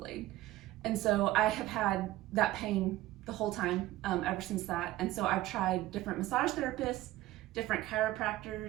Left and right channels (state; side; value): quieter; left; 16.3 dB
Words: And so I have had that pain the whole time ever since that. And so I've tried different massage therapists, different